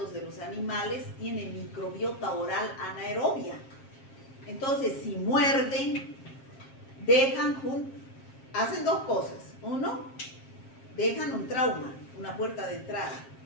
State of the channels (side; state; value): right; late; 7.5 ms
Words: de los animales, tiene microbiota oral anaerobia. Entonces, si muerden, hacen dos cosas. Uno, dejan un trauma, una puerta de entrada,